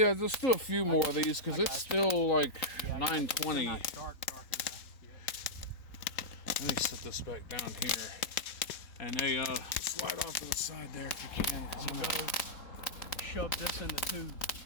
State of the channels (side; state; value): right; late; 3.9 ms